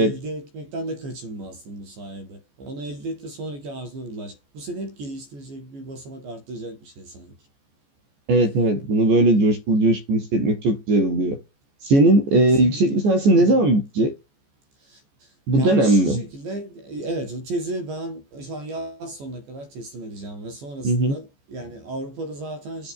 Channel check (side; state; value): left; late; 14 ms